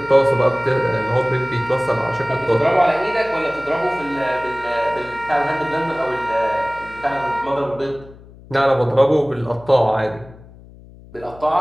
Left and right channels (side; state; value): left; noise; hum, 21 dB below the sound